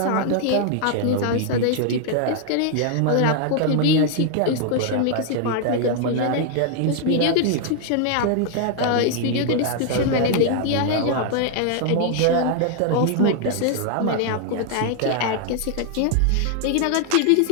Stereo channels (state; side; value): different; both; correlation 0.00